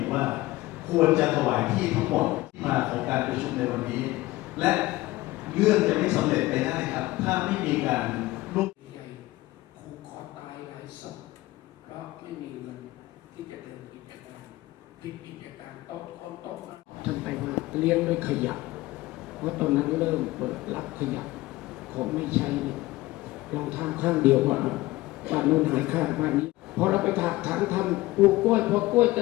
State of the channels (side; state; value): right; quieter; 18.6 dB